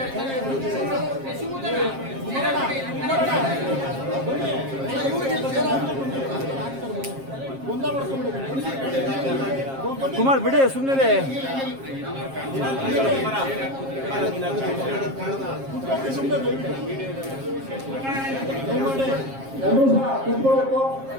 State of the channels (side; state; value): left; late; 7.5 ms